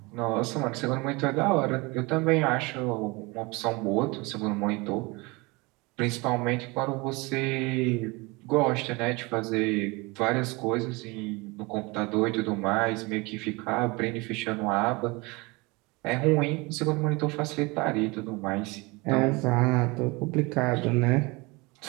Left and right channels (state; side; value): quieter; left; 25.6 dB